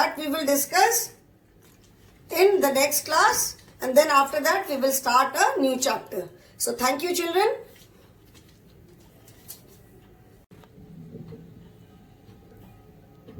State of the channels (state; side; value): identical; both; correlation 1.00